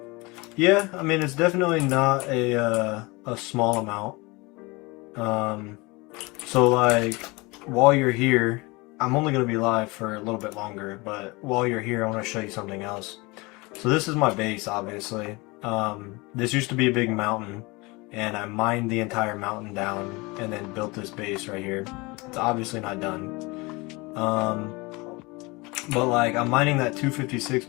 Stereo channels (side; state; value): right; quieter; 24.9 dB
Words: Yeah, I mean, it's definitely not a small amount. So like, while you're here, I'm only going to be live for a little bit longer, but while you're here, I want to show you something else. So this is my base, obviously. This used to be a big mountain, and I mined the entire mountain down and then built this base right here. It's obviously not done. But like, I'm mining that 256